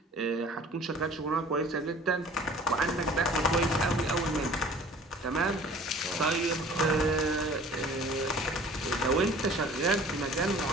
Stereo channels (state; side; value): normal; both; correlation 0.48